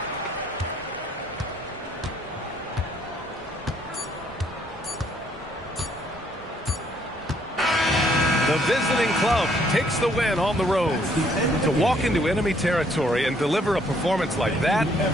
The The visiting club takes the win on the road. To walk into enemy territory and deliver a performance like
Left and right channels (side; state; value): both; normal; correlation 0.66